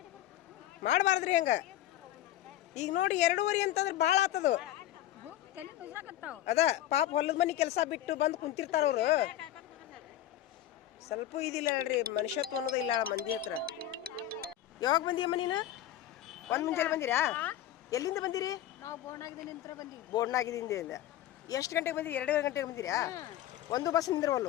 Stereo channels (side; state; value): right; quieter; 12.6 dB